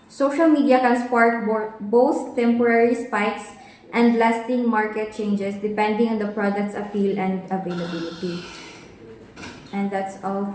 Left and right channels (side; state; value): both; identical; correlation 1.00